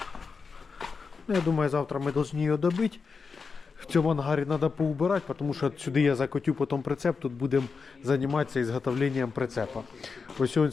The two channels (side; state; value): right; quieter; 5.0 dB